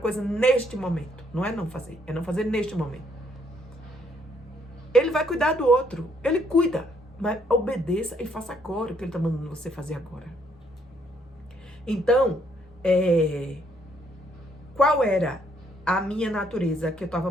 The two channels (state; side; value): normal; both; correlation 0.69